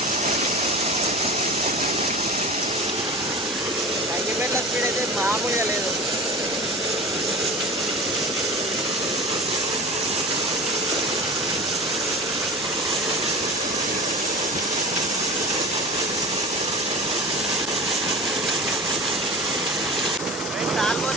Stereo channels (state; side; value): normal; both; correlation 0.33